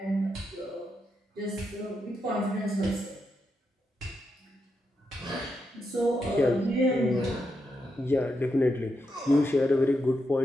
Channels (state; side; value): normal; both; correlation 0.84